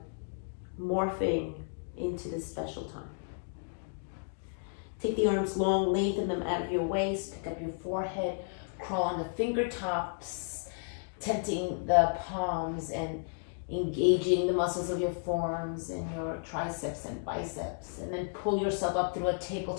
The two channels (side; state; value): right; silent; digital silence